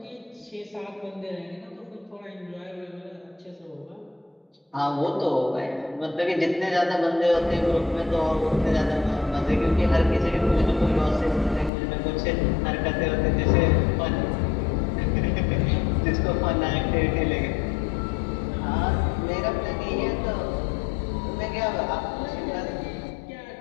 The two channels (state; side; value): drops out; right; at 11.7 s